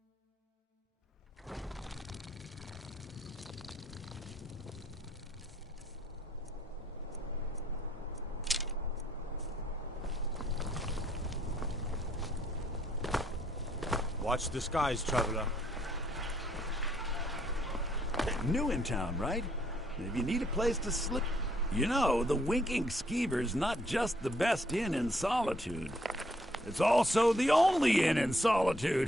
Watch the skies, traveler. New in town, right? If you need a place to sleep... You know, the Winking Skeever's not just the best inn in Solitude. It's also the only inn in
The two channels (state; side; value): normal; both; correlation 0.68